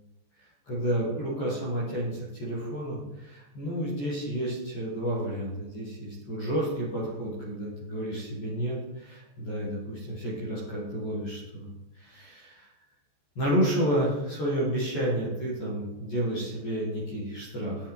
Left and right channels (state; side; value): late; right; 14 ms